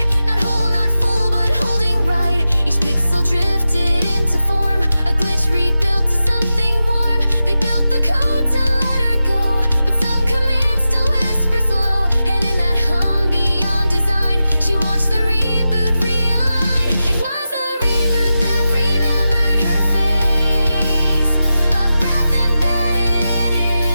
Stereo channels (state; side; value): inverted; both; correlation -0.92